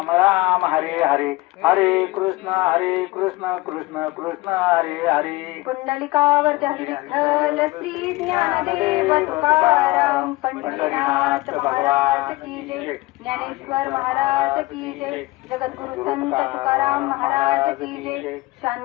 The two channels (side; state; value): right; quieter; 21.3 dB